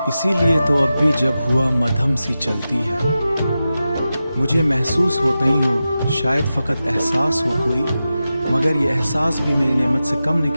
इसीलिए तो अब भी जब हुआ मध्यम सी चलती है, मुझे महसूस होता ही हो, शायद फकत एहसास हो कोई, मगर ये एहसास भी मेरी नेमत से कम नहीं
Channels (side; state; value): both; inverted; correlation -0.93